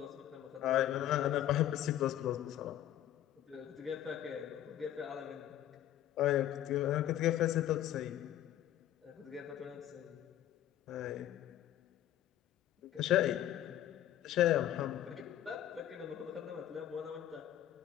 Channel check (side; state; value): right; quieter; 12.1 dB